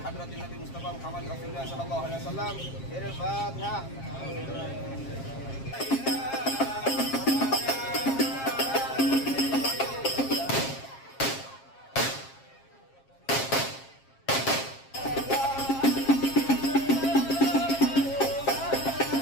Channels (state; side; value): late; right; 7.4 ms